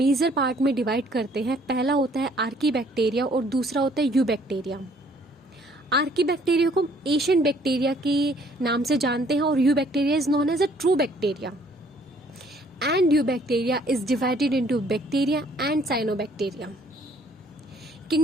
पार्ट में डिवाइड करते हैं। पहला होता है आर्कीबैक्टीरिया और दूसरा होता है यूबैक्टीरिया। आर्कीबैक्टीरिया को एशियन बैक्टीरिया के नाम से जानते हैं और eubacteria is known as a true bacteria, and eubacteria is divided into bacteria and cyanobacteria.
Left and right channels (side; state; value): both; normal; correlation 0.61